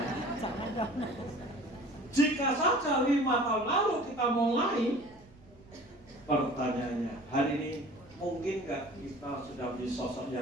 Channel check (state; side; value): noise; right; rumble, 25 dB below the sound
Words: Jika saja 5 tahun lalu kita mulai, pertanyaannya hari ini mungkin nggak kita sudah menjadi sosok